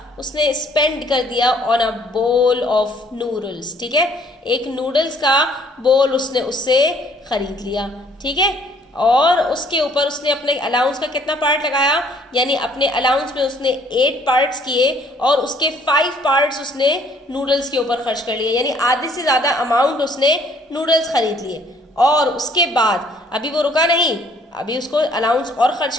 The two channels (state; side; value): normal; both; correlation 0.61